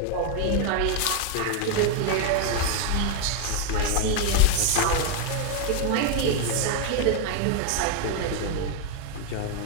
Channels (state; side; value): different; both; correlation 0.01